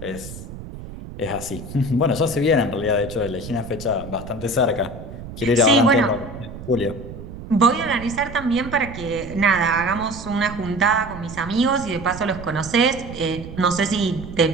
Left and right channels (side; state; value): right; noise; rumble, 12 dB below the sound